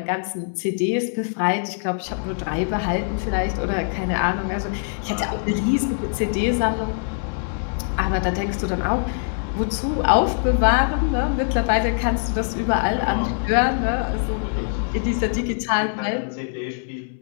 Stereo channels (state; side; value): silent; right; 63 dB below the other